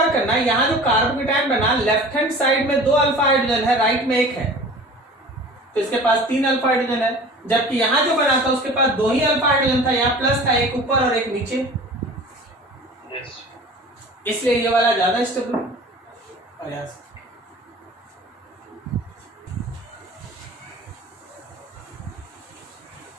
करना, यहां जो कार्बोकेटायन बना लेफ्ट हैंड साइड में 2 अल्फा हाइड्रोजन है, राइट में 1 है, तो इसके पास 3 अल्फा हाइड्रोजन है। जबकि यहां जो बना था उसके पास 2 ही अल्फा हाइड्रोजन था, यहाँ प्लस था, एक ऊपर और एक नीचे। यस इसलिए ये वाला ज्यादा स्टेबल प्रयास।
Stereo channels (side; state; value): both; normal; correlation 0.41